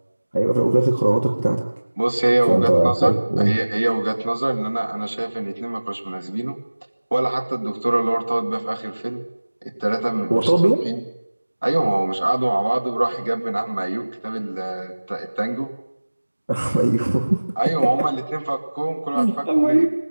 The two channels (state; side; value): inverted; both; correlation -1.00